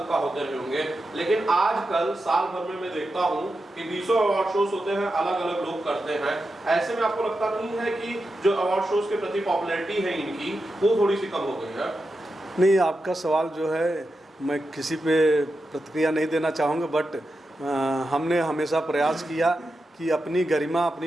होते रहे होंगे। लेकिन आजकल साल भर में मैं देखता हूँ कि 20 अवार्ड शोज होते हैं, अलग अलग लोग करते हैं। ऐसे में आपको लगता नहीं है कि जो अवार्ड शोज के प्रति पॉपुलैरिटी है इनकी वो थोड़ी सी कम हो गई है? नहीं, आपका सवाल जो है मैं किसी पे प्रतिक्रिया नहीं देना चाहूँगा, बट हमने हमेशा प्रयास किया कि अपनी गरिमा,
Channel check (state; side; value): normal; both; correlation 0.89